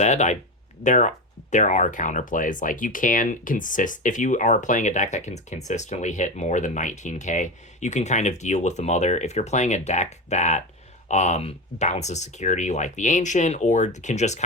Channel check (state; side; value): normal; both; correlation 0.20